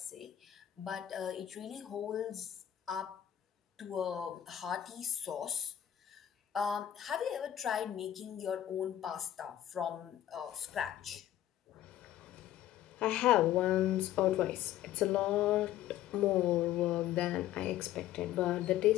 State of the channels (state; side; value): quieter; right; 12.0 dB